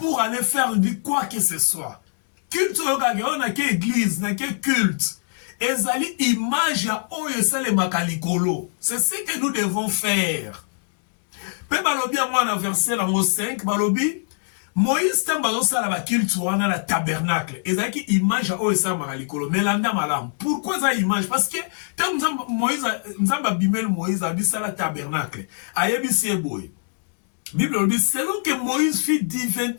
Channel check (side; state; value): right; silent; digital silence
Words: aller faire quoi que ce soit. Culte, on a quelle église, on a quel culte. Ezali image ya oyo sale makalikolo. C'est ce que nous devons faire. Pe balobi a moi na verset lango 5, balobi Moïse tambazo sala ba culte wana la tabernacle. Ezali ki image ya oyo sale makalikolo. Melanda malam. Pourquoi ça image? Parce que tam Moïse nzamba bimel Moïse abisa la tabernacle. Ayebisi boy. Bible dit selon que Moïse fut